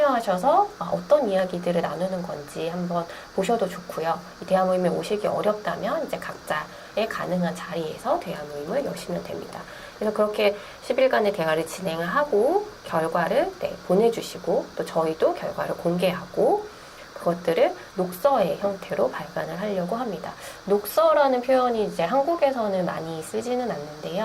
어떤 이야기들을 나누는 건지 한번 보셔도 좋고요. 이 대화 모임에 오시기 어렵다면 이제 각자의 가능한 자리에서 대화 모임을 여시면 됩니다. 그래서 그렇게 10일간의 대화를 진행을 하고 결과를 보내주시고, 또 저희도 결과를 공개하고 그것들을 녹서의 형태로 발간을 하려고 합니다. 녹서라는 표현이 이제 한국에서는 많이 쓰지는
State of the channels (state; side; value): identical; both; correlation 1.00